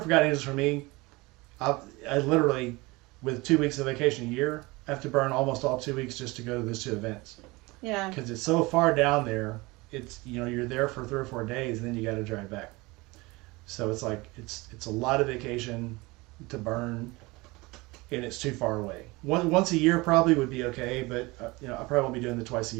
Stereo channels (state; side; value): quieter; left; 23.2 dB